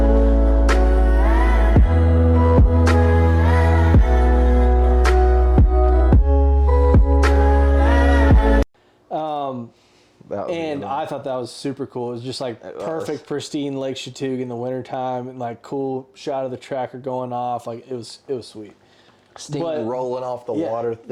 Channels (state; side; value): identical; both; correlation 1.00